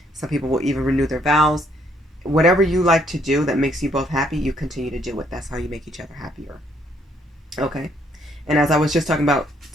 Some people will even renew their vows. Whatever you like to do that makes you both happy, you continue to do it. That's how you make each other happier. Okay? And as I was just talking about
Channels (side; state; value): both; normal; correlation 0.68